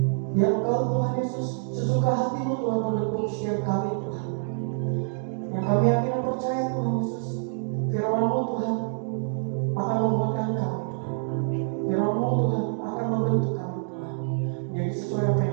Biar Engkau Tuhan Yesus sesuka hati-Mu Tuhan menepuk setiap kami Tuhan. Yang kami yakin dan percaya Tuhan Yesus, firman-Mu Tuhan akan membuatkan kami Tuhan. Firman-Mu Tuhan akan membentuk kami Tuhan. Jadi sesuai apa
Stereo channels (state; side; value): silent; left; digital silence